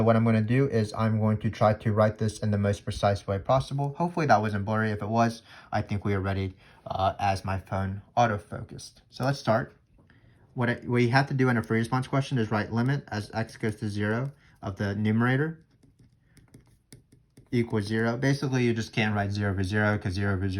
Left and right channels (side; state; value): both; identical; correlation 1.00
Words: what I'm going to do is I'm going to try to write this in the most precise way possible. Hopefully that wasn't blurry. If it was, I think we are ready as my phone auto-focused. So let's start. What we have to do in a free response question is write limit as x goes to 0 of the numerator equals 0. Basically, you just can't write 0 over 0 because 0 over